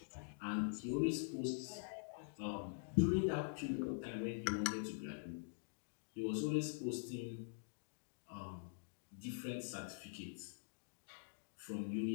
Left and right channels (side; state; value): right; silent; digital silence